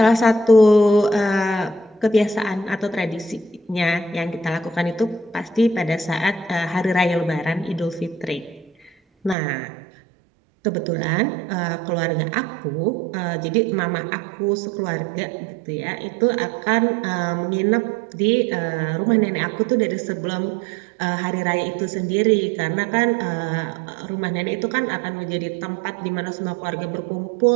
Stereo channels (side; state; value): left; drops out; at 9.3 s